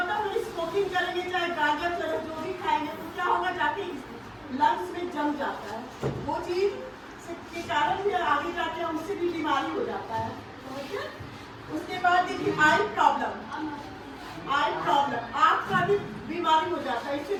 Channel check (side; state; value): both; identical; correlation 1.00